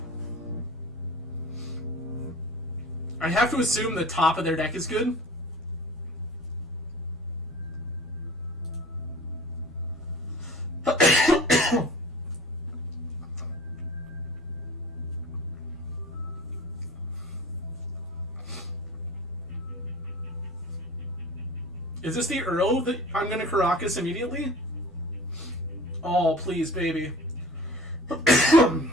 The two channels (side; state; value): both; normal; correlation 0.41